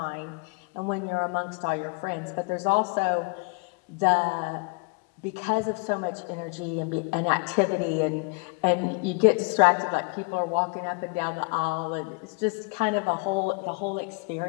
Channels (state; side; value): quieter; right; 30.7 dB